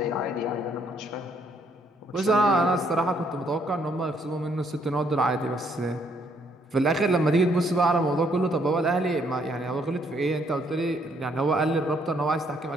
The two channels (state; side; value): normal; both; correlation 0.69